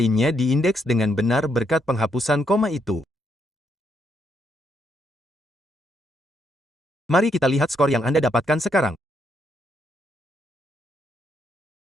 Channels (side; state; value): both; normal; correlation 0.76